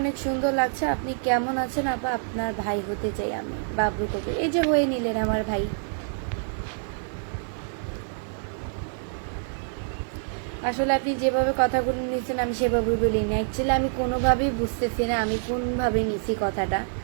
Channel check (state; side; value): silent; left; 61 dB below the other